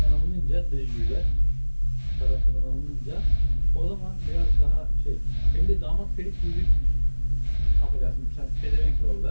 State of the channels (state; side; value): inverted; both; correlation -1.00